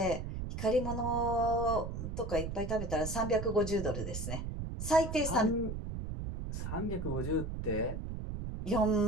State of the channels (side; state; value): right; noise; rumble, 5 dB below the sound